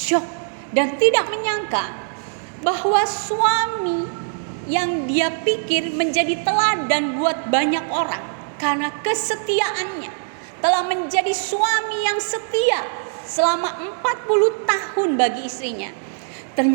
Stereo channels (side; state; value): left; silent; digital silence